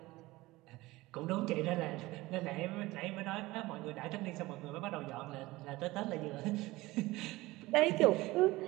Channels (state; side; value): quieter; left; 19.6 dB